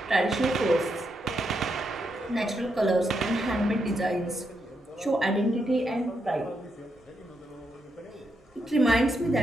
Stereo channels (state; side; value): normal; both; correlation 0.81